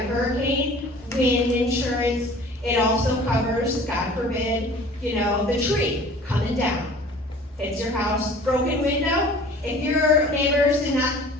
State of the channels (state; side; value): normal; both; correlation 0.46